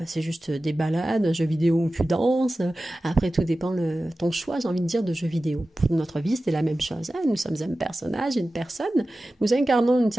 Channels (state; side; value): normal; both; correlation 0.95